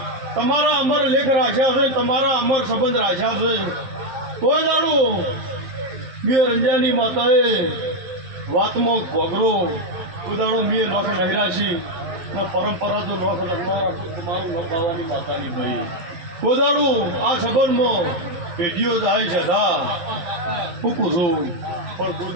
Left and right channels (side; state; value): left; late; 11 ms